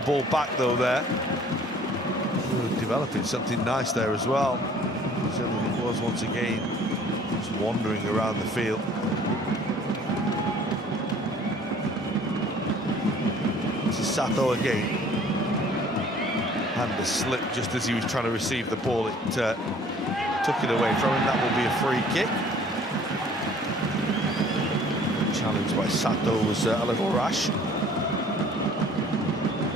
back though there. Ooh, developing something nice there as well. Certainly it was once again just wandering around the field. This is Sato again. And the slip just as he was trying to receive the ball, it took it away from him. That will be a free kick. The challenge by Sato was a little rash.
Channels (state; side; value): normal; both; correlation 0.53